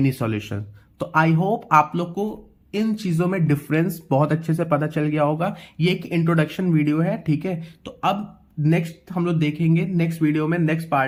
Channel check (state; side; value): identical; both; correlation 1.00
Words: solutions। तो आई होप आप लोग को इन चीजों में डिफरेंस बहुत अच्छे से पता चल गया होगा। ये एक इंट्रोडक्शन वीडियो है, ठीक है। तो अब नेक्स्ट हम लोग देखेंगे, नेक्स्ट वीडियो में नेक्स्ट